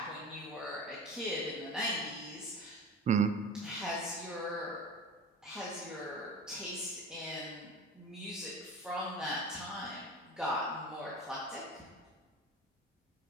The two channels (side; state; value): both; normal; correlation 0.33